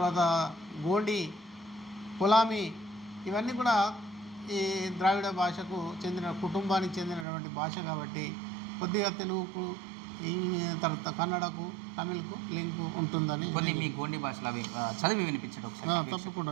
గోండి, కొలామి, ఇవన్నీ కూడా ఈ ద్రావిడ భాషకు చెందిన కుటుంబానికి చెందినటువంటి భాష. కాబట్టి కొద్దిగా తెలుగుకు, తర్వాత కన్నడకు, తమిళ్కు లింకు ఉంటుందని. కొన్ని మీ గోండి భాషలో అవి చదివి వినిపించడం ఒకసారి. తప్పకుండా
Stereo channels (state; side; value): drops out; left; at 7.2 s